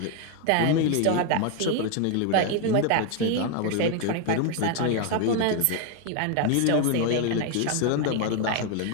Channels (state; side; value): different; both; correlation 0.01